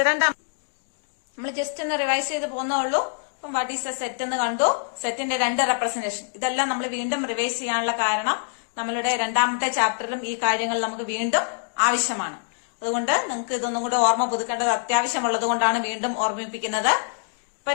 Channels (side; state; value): right; silent; digital silence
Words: രണ്ടാം. നമ്മൾ ജസ്റ്റ് ഒന്ന് റിവൈസ് ചെയ്ത് പോകുന്നുള്ളൂ. അപ്പം വാട്ട് ഈസ് എ സെറ്റ് എന്ന് കണ്ടു. സെറ്റിന്റെ രണ്ട് റെപ്രസെന്റേഷൻ. ഇതെല്ലാം നമ്മൾ വീണ്ടും റിവൈസ് ചെയ്യാനുള്ള കാരണം നമ്മളുടെ രണ്ടാമത്തെ ചാപ്റ്ററിലും ഈ കാര്യങ്ങൾ നമുക്ക് വീണ്ടും ആവശ്യമാണ്. അതുകൊണ്ട് നിങ്ങൾക്ക് ഇതൊന്നും കൂടെ ഓർമ്മ പുതുക്കേണ്ടത് അത്യാവശ്യമുള്ളത് കൊണ്ടാണ് വീണ്ടും ഓർമ്മിപ്പിക്കുന്നത്. ഇപ്പൊ